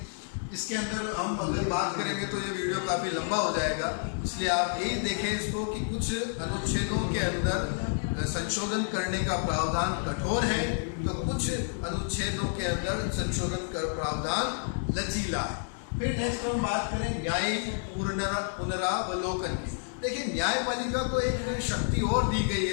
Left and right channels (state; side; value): silent; right; digital silence